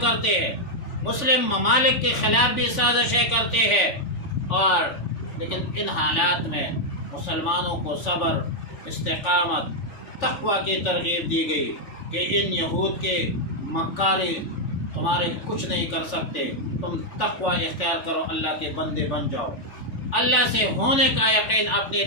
کرتے ہیں، مسلم ممالک کے خلاف بھی سازشیں کرتے ہیں. اور لیکن ان حالات میں مسلمانوں کو صبر، استقامت، تقوی کی ترغیب دی گئی کہ ان یہود کے مکاری تمہارے کچھ نہیں کر سکتے، تم تقوی اختیار کرو، اللہ کے بندے بن جاؤ، اللہ سے ہونے کا یقین اپنے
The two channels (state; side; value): late; right; 3.4 ms